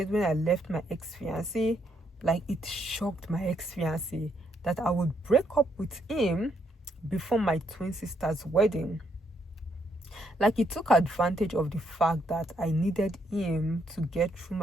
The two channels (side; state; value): both; normal; correlation 0.74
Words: when I left my ex-fiancé. Like it shocked my ex-fiancé that I would break up with him before my twin sister's wedding. Like he took advantage of the fact that I needed him to get through